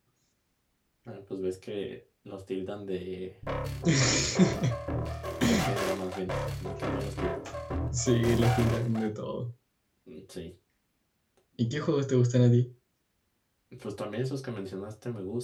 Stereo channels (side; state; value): both; identical; correlation 1.00